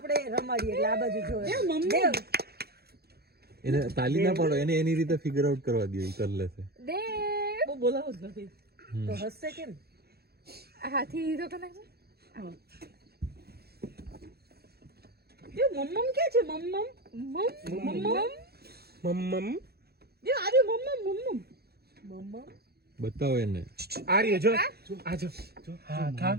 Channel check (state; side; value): late; left; 0.46 ms